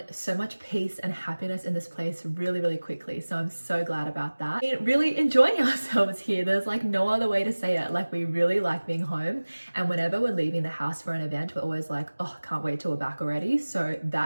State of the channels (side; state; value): both; inverted; correlation -1.00